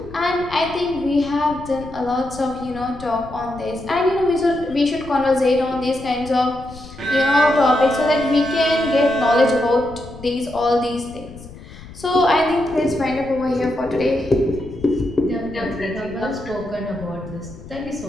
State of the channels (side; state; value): left; noise; rumble, 16 dB below the sound